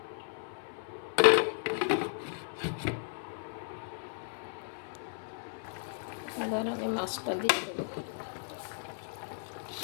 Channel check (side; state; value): right; silent; 55 dB below the other